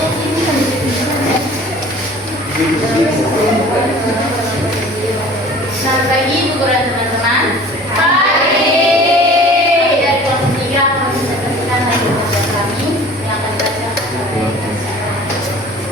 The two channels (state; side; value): normal; both; correlation 0.45